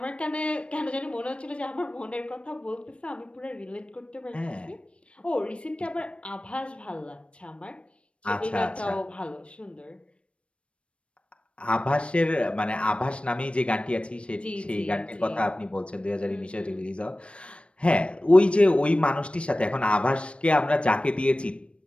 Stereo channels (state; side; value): late; right; 0.060 ms